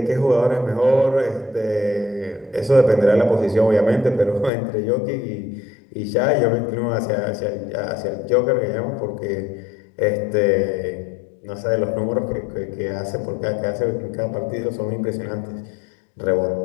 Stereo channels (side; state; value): right; drops out; at 4.5 s